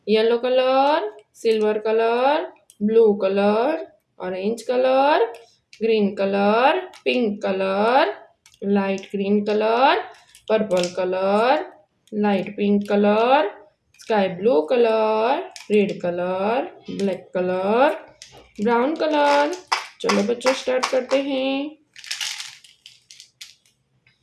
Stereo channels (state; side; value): identical; both; correlation 1.00